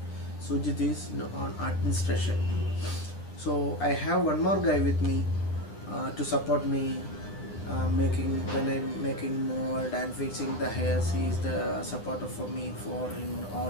Sujit is on administration. So I have one more guy with me to support me when I'm making mold and fixing the hairs. He is the supporter for me for in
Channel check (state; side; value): late; right; 9.7 ms